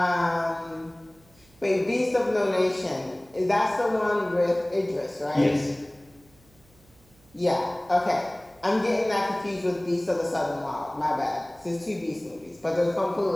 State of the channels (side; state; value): right; noise; hum, 29 dB below the sound